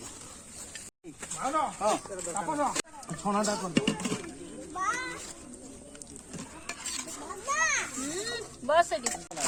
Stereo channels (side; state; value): both; identical; correlation 1.00